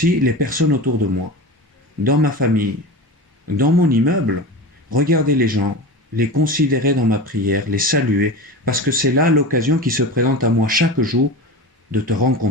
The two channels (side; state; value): both; normal; correlation 0.28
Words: les personnes autour de moi, dans ma famille, dans mon immeuble. Regarder les gens, les considérer dans ma prière, les saluer, parce que c'est là l'occasion qui se présente à moi chaque jour de te